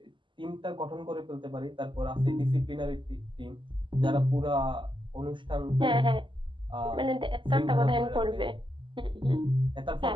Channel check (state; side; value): late; left; 0.24 ms